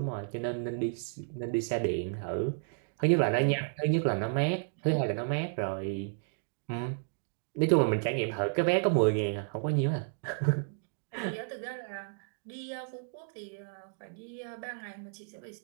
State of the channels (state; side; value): silent; left; digital silence